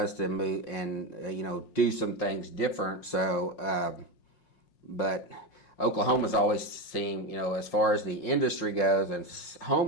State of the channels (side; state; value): right; late; 5.5 ms